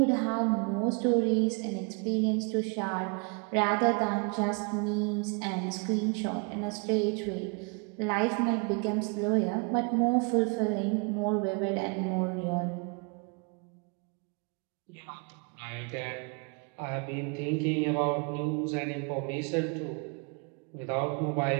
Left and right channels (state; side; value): quieter; left; 34.2 dB